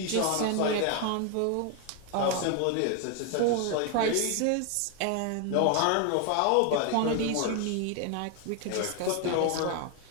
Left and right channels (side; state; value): both; different; correlation 0.01